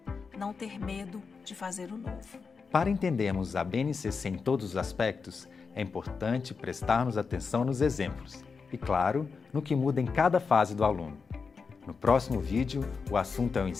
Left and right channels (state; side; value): quieter; right; 5.1 dB